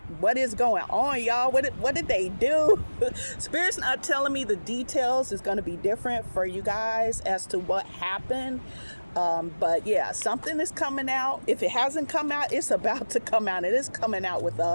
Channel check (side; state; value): both; inverted; correlation -1.00